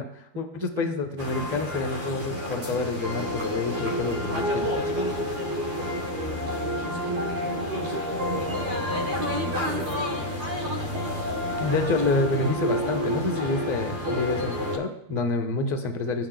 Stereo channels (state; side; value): late; left; 12 ms